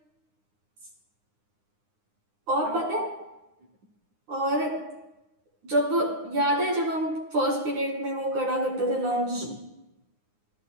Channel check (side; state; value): left; late; 9.7 ms